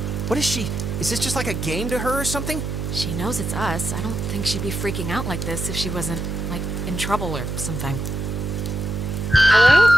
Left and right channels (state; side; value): noise; right; hum, 4 dB below the sound